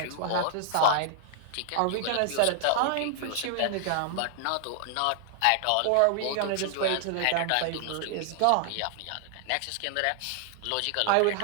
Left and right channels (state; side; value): different; both; correlation 0.00